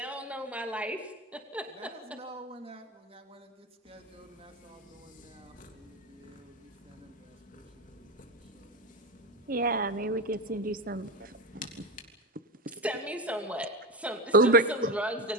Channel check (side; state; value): both; normal; correlation 0.18